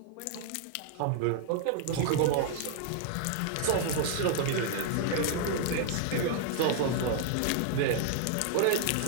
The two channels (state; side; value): different; both; correlation 0.00